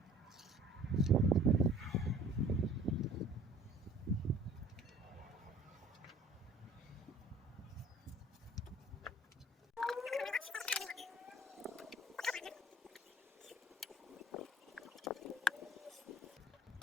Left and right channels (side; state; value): both; normal; correlation 0.51